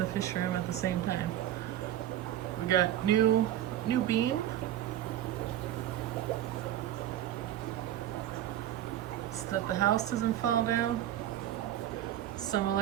fish room at the same time. We got new beam. So that the house doesn't fall down. Some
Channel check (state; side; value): quieter; left; 12.1 dB